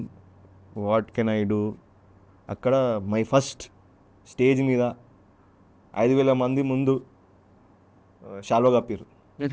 what can I do. అక్కడ మై ఫస్ట్ స్టేజ్ మీద 5,000 మంది ముందు షాలో కప్పారు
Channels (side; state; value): both; identical; correlation 1.00